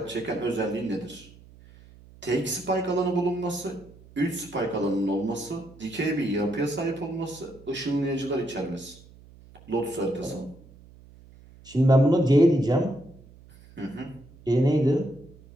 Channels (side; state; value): right; noise; hum, 23 dB below the sound